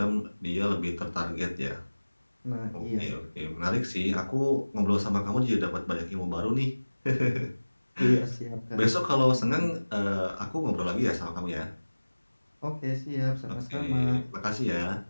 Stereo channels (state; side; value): inverted; both; correlation -1.00